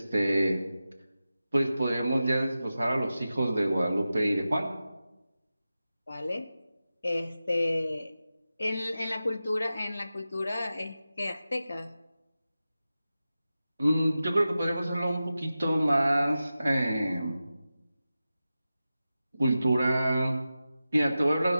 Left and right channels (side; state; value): both; inverted; correlation -0.93